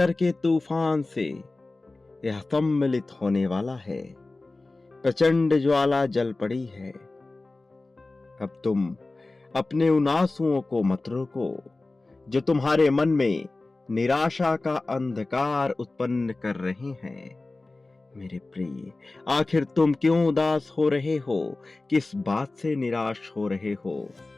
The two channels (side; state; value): right; quieter; 3.2 dB